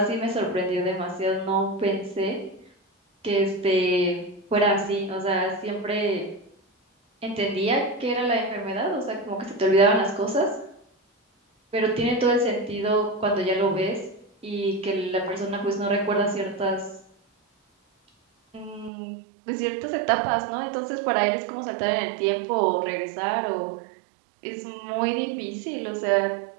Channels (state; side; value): drops out; left; at 18.9 s